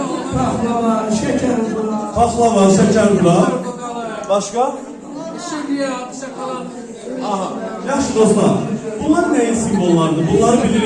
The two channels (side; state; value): both; identical; correlation 1.00